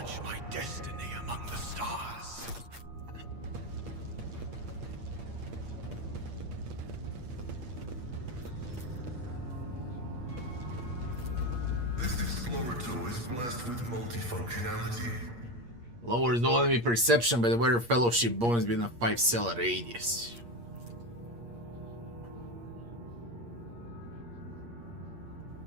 my destiny among the stars. This explorator is blessed with multifunctionality. Lowers the enemy perception by the weather fellowship bonus within a 5-cell radius.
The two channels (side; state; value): left; late; 8.5 ms